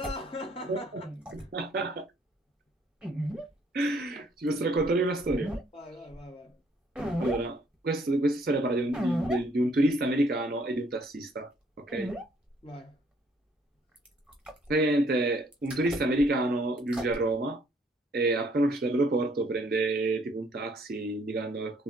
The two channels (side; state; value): both; normal; correlation 0.65